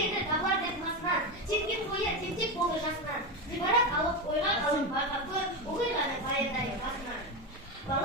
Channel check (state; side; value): normal; both; correlation 0.15